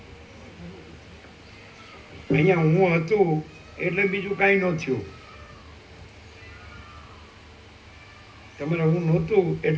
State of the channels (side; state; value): both; identical; correlation 1.00